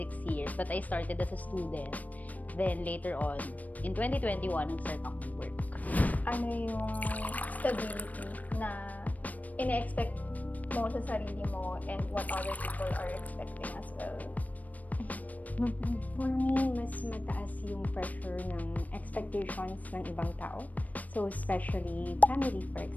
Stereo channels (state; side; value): late; right; 0.074 ms